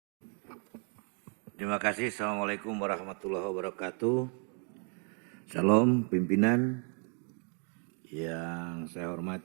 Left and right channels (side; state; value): left; quieter; 39.9 dB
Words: Terima kasih. Assalamualaikum warahmatullahi wabarakatuh. Salam pimpinan yang saya